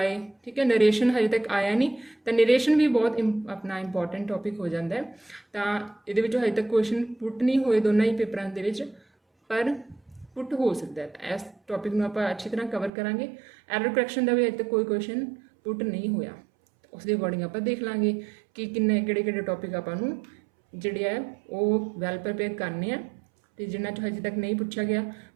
ਠੀਕ ਹੈ, ਨਰੇਸ਼ਨ ਹਜੇ ਤੱਕ ਆਇਆ ਨਹੀਂ, ਤਾਂ ਨਰੇਸ਼ਨ ਵੀ ਬਹੁਤ ਆਪਣਾ ਇੰਪੋਰਟੈਂਟ ਟੌਪਿਕ ਹੋ ਜਾਂਦਾ ਹੈ। ਤਾਂ ਇਹਦੇ ਵਿੱਚੋਂ ਹਜੇ ਤੱਕ ਕੁਐਸਚਨ ਪੁੱਟ ਨਹੀਂ ਹੋਏ ਦੋਨਾਂ ਹੀ ਪੇਪਰਾਂ ਦੇ ਵਿੱਚ, ਪਰ ਪੁੱਟ ਹੋ ਸਕਦਾ ਹੈ। ਇਸ ਟੌਪਿਕ ਨੂੰ ਆਪਾਂ ਅੱਛੀ ਤਰ੍ਹਾਂ ਕਵਰ ਕਰਾਂਗੇ। ਐਰਰ ਕਰੈਕਸ਼ਨ ਦਾ ਵੀ ਹਜੇ ਤੱਕ ਕੋਈ ਕੁਐਸਚਨ ਪੁੱਟ ਨਹੀਂ ਹੋਇਆ, ਉਸ ਦੇ ਅਕੋਰਡਿੰਗ ਆਪਾਂ ਦੇਖ ਲਾਂਗੇ ਕਿ ਕਿਹੜੇ ਟੌਪਿਕ ਆਪਾਂ ਨੂੰ ਜਿਹੜੇ ਹੈ ਉਹ ਵੈਲ ਪ੍ਰਪੇਅਰ ਕਰਨੇ ਆ, ਅਤੇ ਜਿਨ੍ਹਾਂ 'ਚ ਹਜੇ ਤੱਕ ਨਹੀਂ ਪੁੱਛਿਆ ਗਿਆ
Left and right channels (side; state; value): left; drops out; at 12.9 s